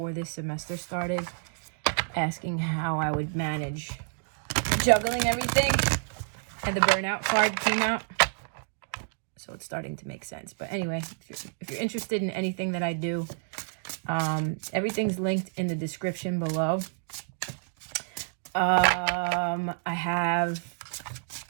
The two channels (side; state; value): left; silent; digital silence